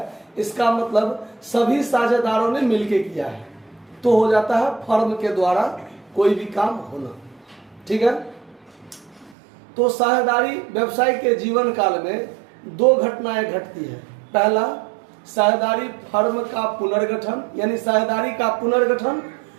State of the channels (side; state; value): left; drops out; at 9.3 s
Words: इसका मतलब सभी साझेदारों ने मिलकर किया है, तो हो जाता है फर्म के द्वारा कोई भी काम होना। ठीक है। तो साझेदारी व्यवसाय के जीवन काल में दो घटनाएं घटती है। पहला, साझेदारी फर्म का पुनर्गठन यानी साझेदारी का पुनर्गठन,